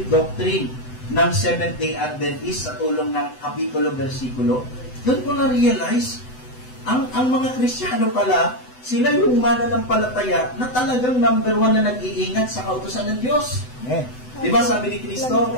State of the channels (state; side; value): late; right; 7.9 ms